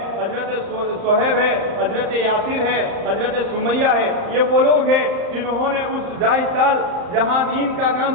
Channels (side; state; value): left; late; 35 ms